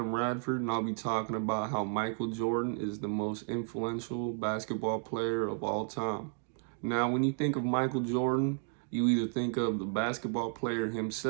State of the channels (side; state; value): left; silent; 56 dB below the other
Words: Radford, and I'll be talking about how Michael Jordan is the most influential basketball player of all time. Now, when you think of Michael Jordan, you either think of the basketball player